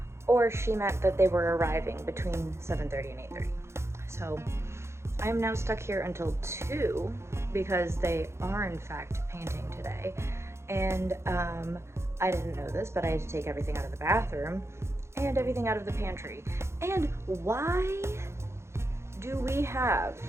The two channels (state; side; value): late; left; 0.13 ms